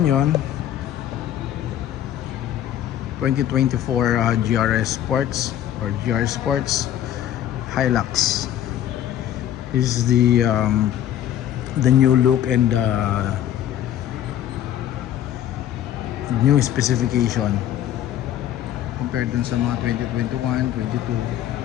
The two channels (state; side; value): quieter; right; 11.3 dB